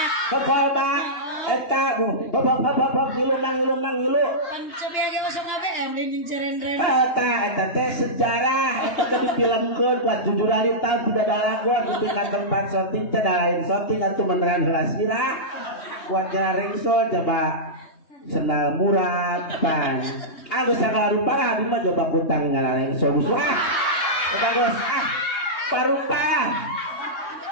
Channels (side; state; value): right; late; 2.9 ms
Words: kolbak eta bapak gilu mang gilu pancobi age masuk ABM jeung cerendren eta teh sejarah eta teh difilmkeun buat 7 hari tahun tidak ada lagu di tempat syuting teh lain syuting atuh beneran heula sira buat jaring so coba senal murad pan agus sagala rupa abi mah coba kutang ngalareng so eta geus parupa